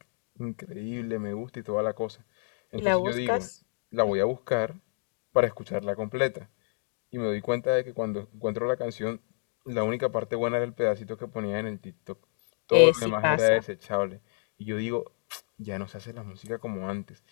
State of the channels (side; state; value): right; silent; digital silence